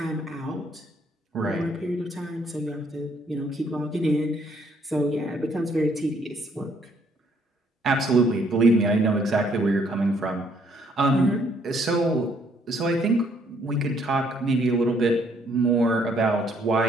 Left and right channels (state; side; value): normal; both; correlation 0.66